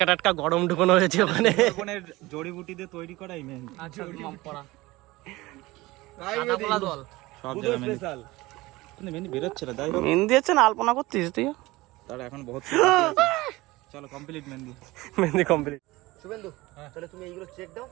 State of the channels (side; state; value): left; quieter; 20.2 dB